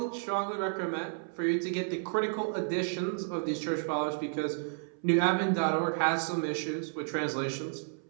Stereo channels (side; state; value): left; silent; 57 dB below the other